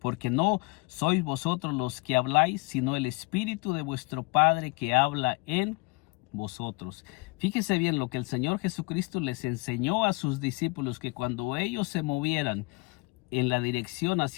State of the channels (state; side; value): quieter; right; 27.0 dB